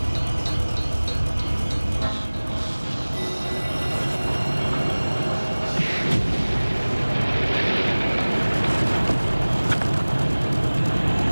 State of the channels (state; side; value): inverted; both; correlation -1.00